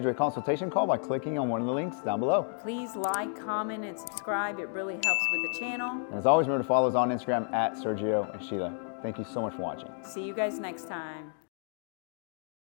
a consultation call by clicking on one of the links down below. Please like, comment, and subscribe. It really helps with the channel. And as always, remember to follow us on Instagram at Sergio and Sheila. Thank you so much for watching. See you guys next time.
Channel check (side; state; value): right; silent; 57 dB below the other